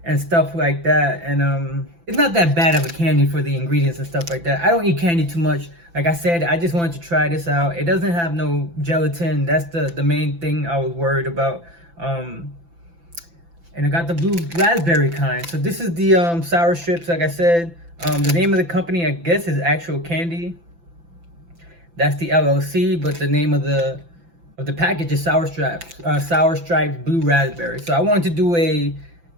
and stuff like that. And it's not that bad of a candy for the ingredients and stuff like that. I don't eat candy too much. Like I said, I just wanted to try this out. It doesn't have no gelatin. That's the main thing I was worried about. And I got the blue raspberry kind. So this is the Sour Strips, like I said. The name of the company, I guess, is Actual Candy. That's the LLC, but the name of the package is Sour Stripes. Sour Stripes Blue Raspberry. So I wanted to do a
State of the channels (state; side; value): late; left; 5.9 ms